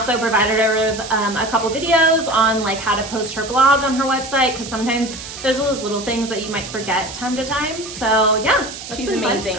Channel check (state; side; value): noise; right; hiss, 11 dB below the sound